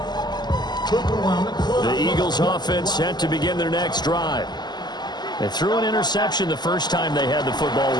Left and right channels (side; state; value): right; late; 0.21 ms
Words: The Eagles offense set to begin their next drive. They threw an interception the first time they had the football,